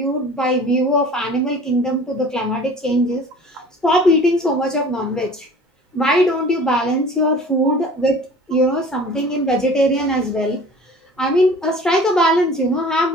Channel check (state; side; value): normal; both; correlation 0.44